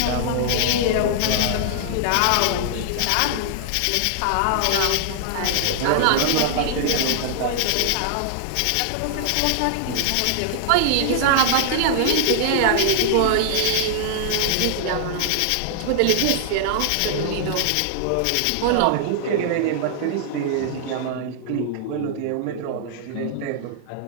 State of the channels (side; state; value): both; different; correlation -0.01